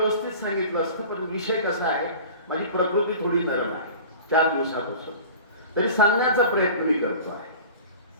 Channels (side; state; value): both; inverted; correlation -0.40